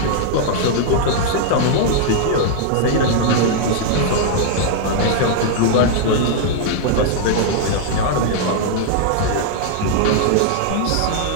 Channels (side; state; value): both; different; correlation -0.01